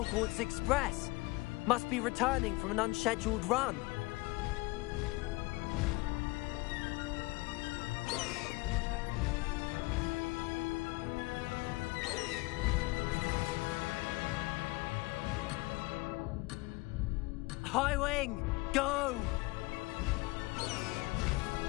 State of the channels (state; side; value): quieter; right; 23.2 dB